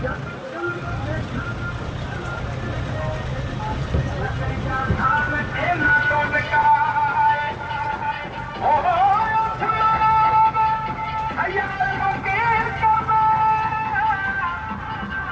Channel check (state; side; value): identical; both; correlation 1.00